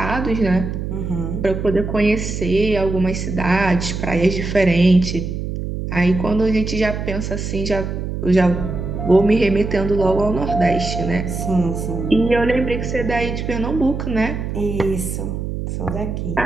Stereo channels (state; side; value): noise; right; hum, 4 dB below the sound